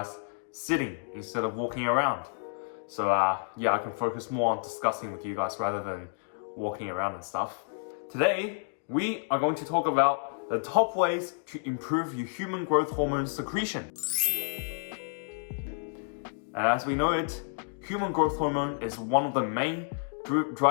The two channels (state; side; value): silent; right; digital silence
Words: sitting instead of walking around. So yeah, I can focus more on discussing with you guys rather than walking around and stuff. Today, we are going to talk about the top ways to improve your human growth hormone secretion. And as we know it, human growth hormone is one of the main